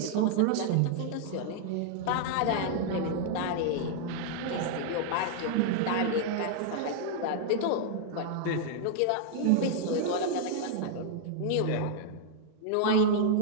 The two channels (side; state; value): both; different; correlation -0.01